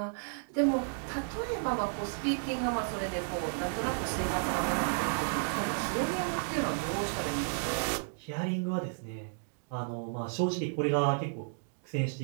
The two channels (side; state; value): left; silent; digital silence